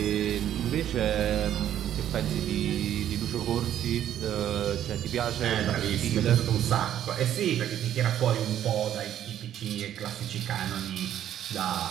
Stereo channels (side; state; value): left; quieter; 11.0 dB